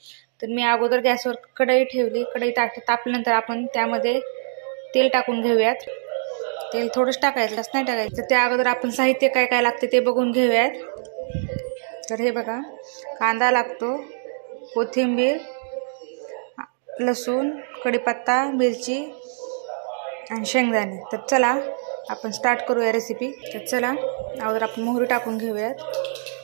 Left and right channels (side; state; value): left; silent; digital silence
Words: तर मी अगोदर गॅसवर कढई ठेवली. कढई तापल्यानंतर आपण त्यामध्ये तेल टाकून घेऊयात. तेल थोडंच टाकायचं, जास्त नाही टाकायचं. त्या अगोदर आपण साहित्य काय काय लागते ते बघून घेऊयात. तर हे बघा, कांदा लागतो, कोथिंबीर, लसूण, कढीपत्ता, मिरची आणि शेंगदाणे. तर चला आपण स्टार्ट करूया रेसिपी. तर चला अगोदर आपण मोहरी टाकून घेऊयात.